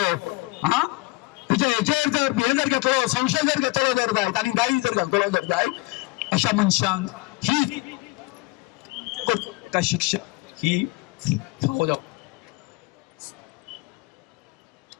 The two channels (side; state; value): right; quieter; 23.5 dB